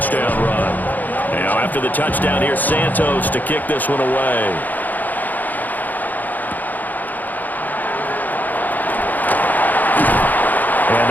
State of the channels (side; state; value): right; late; 0.083 ms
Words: run. Now after the touchdown here, Santos to kick this one away. And